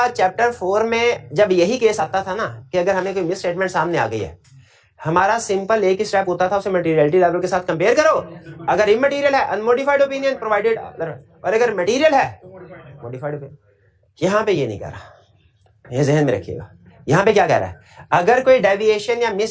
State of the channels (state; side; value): identical; both; correlation 1.00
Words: चैप्टर 4 में जब यही केस आता था ना कि अगर हमें कोई मिस स्टेटमेंट सामने आ गई है, हमारा सिंपल एक ही स्टेप होता था, उसे मटेरियलिटी लेवल के साथ कंपेयर करो। अगर इमटेरियल है अनमोडिफाइड ओपिनियन प्रोवाइडेड, और अगर मटेरियल है मॉडिफाइड ओपिनियन। यहां पे ये नहीं कह रहा, ये ज़हन में रखिएगा। यहां पे क्या कह रहा है? अगर कोई डेविएशन या मिस